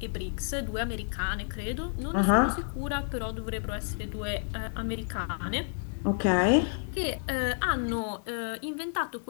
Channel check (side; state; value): right; silent; digital silence